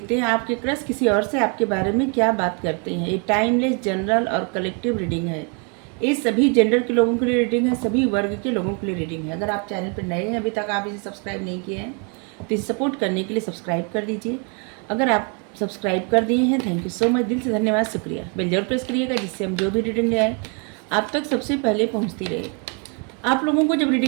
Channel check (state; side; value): quieter; left; 36.6 dB